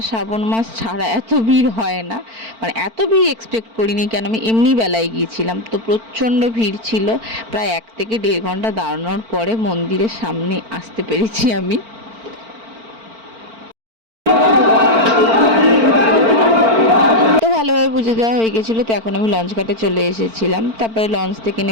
শ্রাবণ মাস ছাড়া এত ভিড় হয় না। মানে এত ভিড় এক্সপেক্ট করিনি, কেন আমি এমনি বেলায় গিয়েছিলাম। তো প্রচণ্ড ভিড় ছিল। প্রায় 1 থেকে 1.5 ঘন্টা দাঁড়ানোর পরে মন্দিরের সামনে আসতে পেরেছি আমি। তো ভালোভাবে পুজো দেওয়া হয়ে গেছিলো। তো এখন আমি লঞ্চ ঘাটে চলে এসেছিলাম। তারপরে লঞ্চ থেকে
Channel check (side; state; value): left; late; 4.4 ms